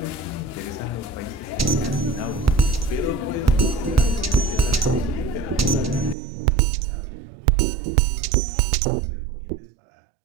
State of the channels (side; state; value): left; drops out; at 6.2 s